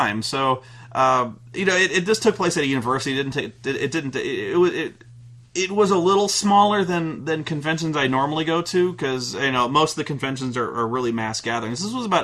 So, this took place at a university. It was a little smaller than conventions I normally go to, because most of the conventions are really mass gatherings. This was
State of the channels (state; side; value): identical; both; correlation 1.00